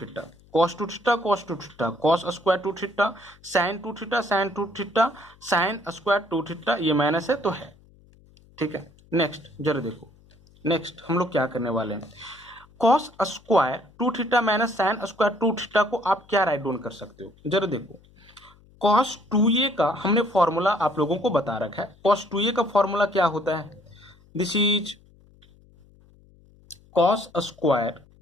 cos 2 theta, cos 2 theta, cos square 2 theta, sine 2 theta, sine 2 theta, sine square 2 theta, ये माइनस है तो है। ठीक है, नेक्स्ट जरा देखो, नेक्स्ट हम लोग क्या करने वाले हैं, cos square 2 theta minus sine square 2 theta को आप क्या राइट डाउन कर सकते हो, जरा देखो। कॉस 2a का हमने फॉर्मूला आप लोगों को बता रखा है। कॉस 2a का फॉर्मूला क्या होता है, दिस इज कॉस स्क्वायर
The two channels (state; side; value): noise; left; hum, 28 dB below the sound